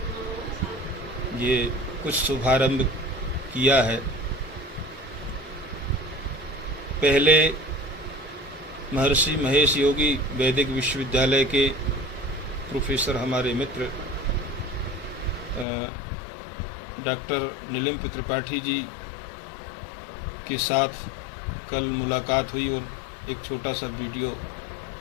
ये कुछ शुभारंभ किया है। पहले महर्षि महेश योगी वैदिक विश्वविद्यालय के प्रोफेसर, हमारे मित्र डॉक्टर नीलम त्रिपाठी जी के साथ कल मुलाकात हुई और एक छोटा सा वीडियो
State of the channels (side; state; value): right; drops out; at 15.7 s